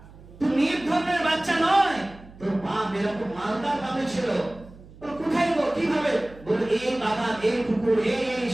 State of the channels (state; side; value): noise; right; hum, 20 dB below the sound